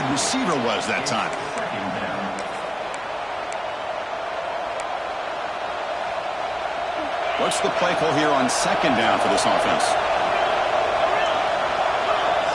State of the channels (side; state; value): both; identical; correlation 1.00